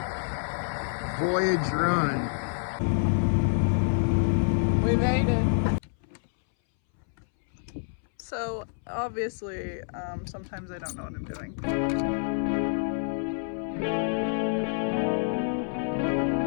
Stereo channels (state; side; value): silent; right; 59 dB below the other